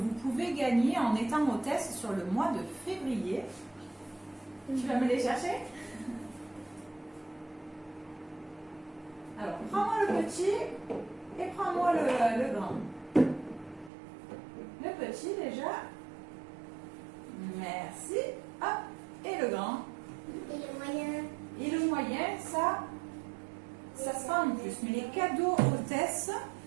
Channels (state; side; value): drops out; left; at 13.9 s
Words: pouvez gagner en étant hôtesse sur le mois de février. Tu vas me les chercher? Alors, prends-moi le petit et prends-moi le grand. Le petit déjà. Merci. Hop. Et le grand. Et le moyen. Et le moyen, ça sera en plus. Mais les cadeaux hôtesses,